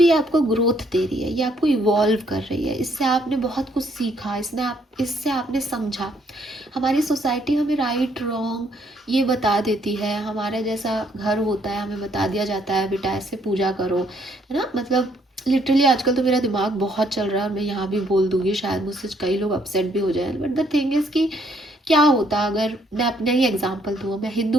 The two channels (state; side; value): normal; both; correlation 0.68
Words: आपको ग्रोथ दे रही है, ये आपको इवॉल्व कर रही है। इससे आपने बहुत कुछ सीखा, इससे आपने समझा। हमारी सोसाइटी हमें राइट रॉन्ग ये बता देती है, हमारा जैसा घर होता है हमें बता दिया जाता है बेटा ऐसे पूजा करो, है ना। मतलब लिटरली आजकल तो मेरा दिमाग बहुत चल रहा है, मैं यहाँ भी बोल दूँगी, शायद मुझसे कई लोग अपसेट भी हो जाए। बट द थिंग इज़ कि क्या होता अगर मैं अपने ही एग्जांपल दूँ, मैं हिंदू